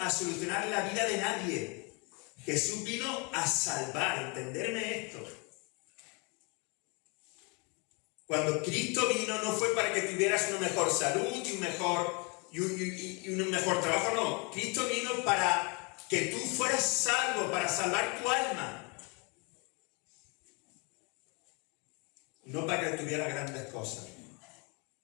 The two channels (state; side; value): quieter; right; 31.6 dB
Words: solucionar la vida de nadie. Jesús vino a salvar, entenderme esto. Cuando Cristo vino no fue para que tuvieras una mejor salud y un mejor trabajo, no. Cristo vino para que tú fueras salvo, para salvar tu alma. No para que tuvieras grandes cosas.